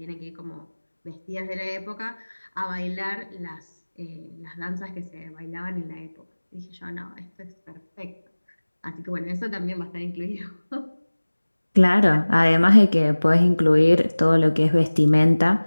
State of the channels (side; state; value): both; inverted; correlation -1.00